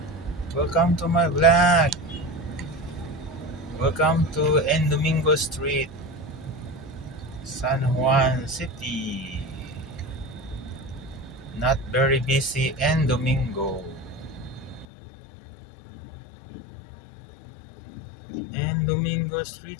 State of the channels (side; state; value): right; drops out; at 14.9 s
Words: Welcome to my vlog. Welcome to N Domingo Street, San Juan City. Not very busy N Domingo. N Domingo